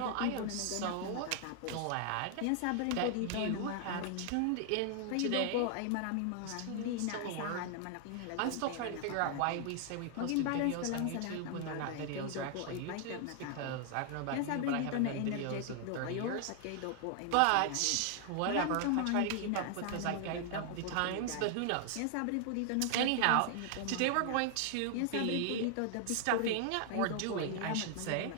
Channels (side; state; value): both; different; correlation 0.00